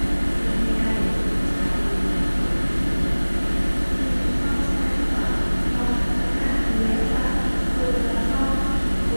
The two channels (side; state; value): both; inverted; correlation -1.00